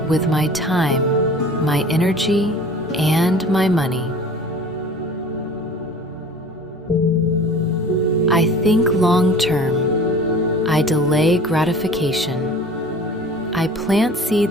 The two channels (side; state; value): both; normal; correlation 0.43